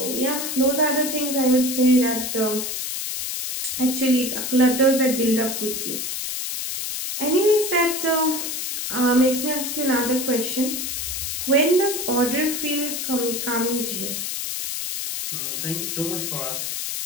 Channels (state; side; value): noise; left; hiss, 3 dB below the sound